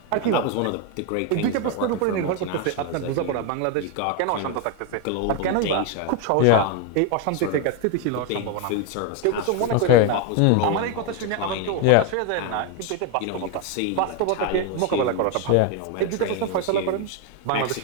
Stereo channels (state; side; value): different; both; correlation 0.01